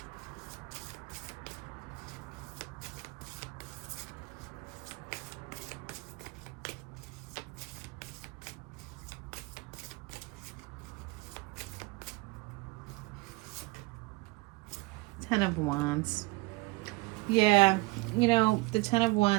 Ten of Wands. Yeah, the Ten of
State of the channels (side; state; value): left; quieter; 23.7 dB